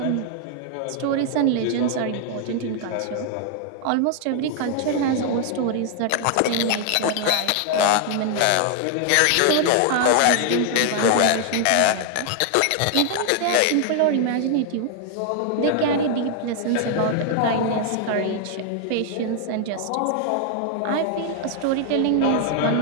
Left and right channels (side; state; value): both; different; correlation 0.00